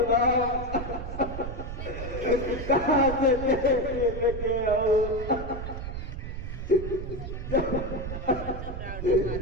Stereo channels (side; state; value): right; noise; rumble, 7 dB below the sound